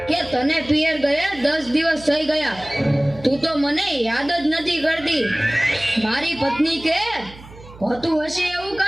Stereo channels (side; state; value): right; noise; hum, 19 dB below the sound